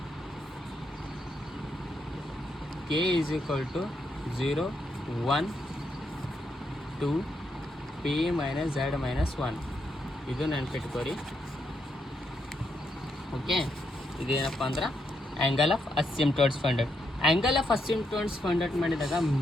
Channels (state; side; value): normal; both; correlation 0.79